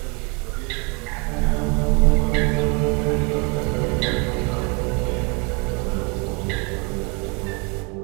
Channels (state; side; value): quieter; left; 32.2 dB